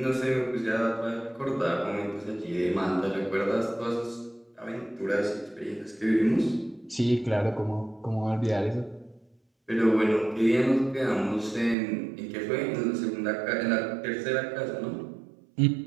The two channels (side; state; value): left; drops out; at 11.8 s